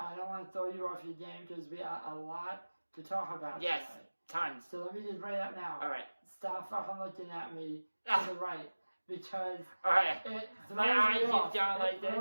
don't want to throw you off your game, because we got a lot to talk about yes, today. tons. So let me just bring it up now. Alright, Stop fucking looking at me to the right, because alright. it throws My eye me keeps off. going like It this?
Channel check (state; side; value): inverted; both; correlation -1.00